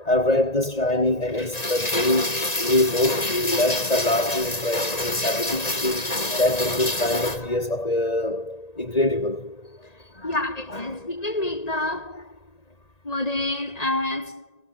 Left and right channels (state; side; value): late; right; 1.9 ms